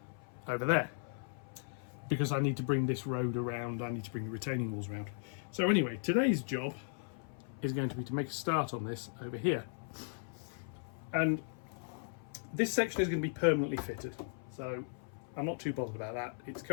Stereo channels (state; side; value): silent; right; 53 dB below the other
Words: over there. Because I need to bring this road around, I need to bring the retaining walls around. So anyway, today's job is going to be to make a start on this over here. And this section is going to be permanently fitted, so I'm not too bothered about that. It's